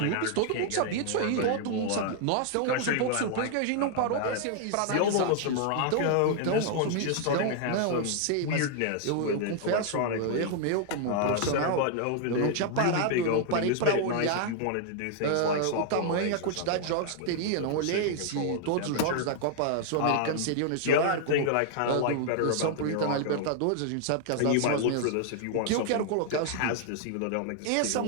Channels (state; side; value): different; both; correlation 0.00